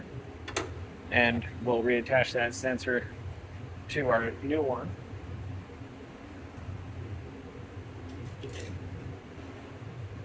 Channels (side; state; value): both; identical; correlation 1.00